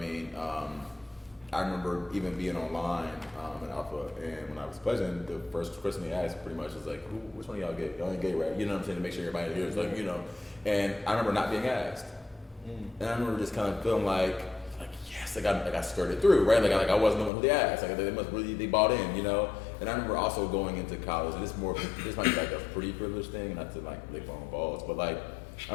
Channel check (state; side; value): drops out; right; at 17.3 s